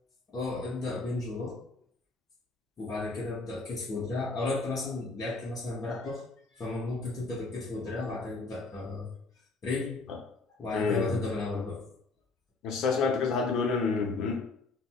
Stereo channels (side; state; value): right; quieter; 3.5 dB